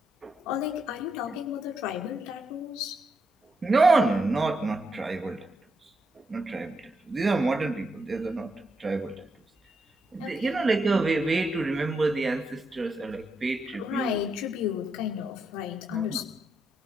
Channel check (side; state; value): both; normal; correlation 0.82